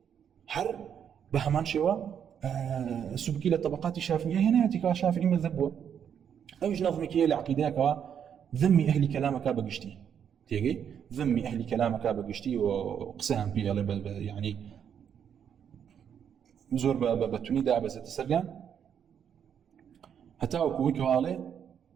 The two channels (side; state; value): left; quieter; 8.3 dB